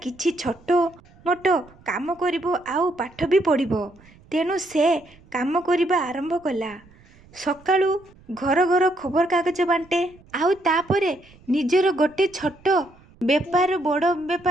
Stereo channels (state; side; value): noise; right; rumble, 27 dB below the sound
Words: କିଛି ଛୋଟ ମୋଟ କାମ କରିବ ଆଉ ପାଠ ବି ପଢ଼ିବ। ତେଣୁ ସେ କାମ କରିବା ଆରମ୍ଭ କଲା। ସକାଳୁ ଘର ଘର ଖବରକାଗଜ ବାଣ୍ଟେ। ଆଉ ତାପରେ ନିଜର ଗୋଟେ ଛୋଟ ବେପାର, ବଡ଼